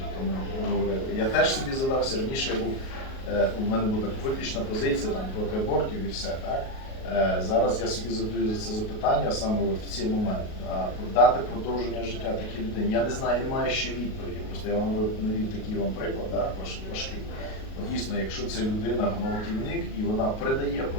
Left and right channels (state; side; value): late; right; 38 ms